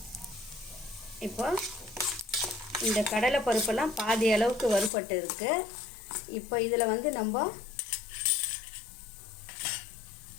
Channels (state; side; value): drops out; right; at 4.9 s